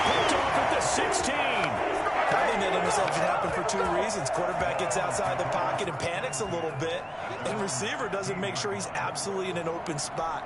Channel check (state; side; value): identical; both; correlation 1.00